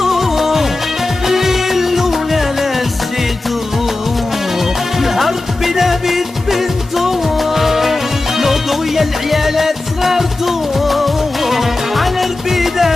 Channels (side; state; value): right; quieter; 3.0 dB